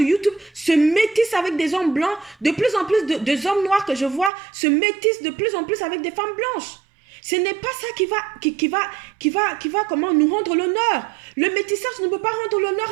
YouTube se métissent avec des hommes blancs. De plus en plus de hommes noirs que je vois se métissent de plus en plus avec des femmes blanches. Ce n'est pas ça qui va comment nous rendre l'honneur. Le métissage ne peut pas rendre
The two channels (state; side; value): drops out; left; at 4.3 s